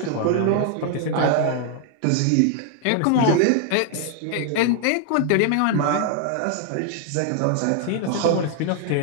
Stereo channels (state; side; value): different; both; correlation 0.00